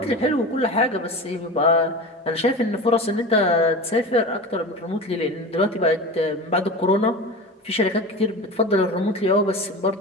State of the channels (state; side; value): normal; both; correlation 0.30